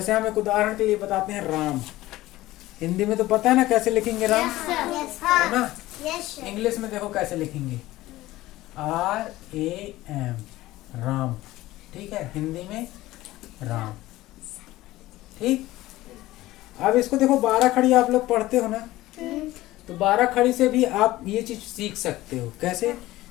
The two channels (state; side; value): quieter; right; 17.0 dB